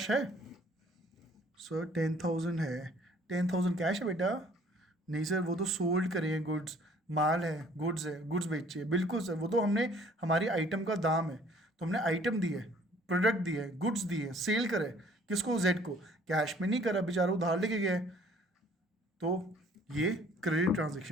है? सर 10,000 है, 10,000 कैश है बेटा? नहीं सर, वो तो सोल्ड करे हैं गुड्स, माल है, गुड्स है, गुड्स बेचे। बिल्कुल सर, वो तो हमने हमारी आइटम का दाम है, तो हमने आइटम दी है, प्रोडक्ट दी है, गुड्स दी है, सेल करे किसको, जेड को, कैश में नहीं करा, बेचारा उधार लेके गया है। तो ये क्रेडिट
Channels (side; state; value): both; normal; correlation 0.57